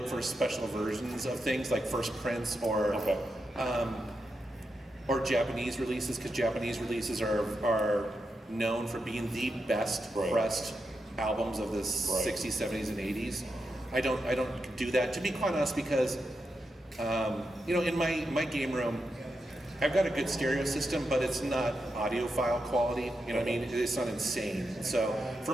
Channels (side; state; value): both; normal; correlation 0.86